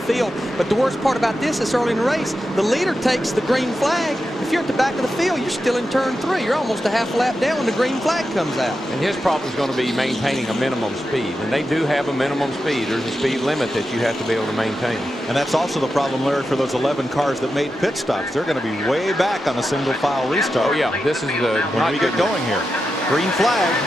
But the worst part about this is early in the race, the leader takes the green flag. If you're at the back of the field, you're still in turn 3. You're almost a half lap down when the green flag comes out. And his problem is going to be maintaining a minimum speed. And they do have a minimum speed. There's a speed limit that you have to be able to maintain. And that's also the problem, Larry, for those 11 cars that made pit stops. They're going to be way back on a single file restart. Oh, yeah. This is when we get going here. Green flag.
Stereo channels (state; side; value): normal; both; correlation 0.89